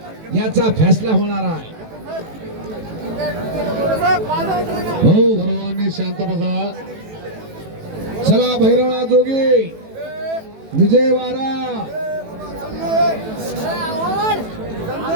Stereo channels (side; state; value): left; late; 18 ms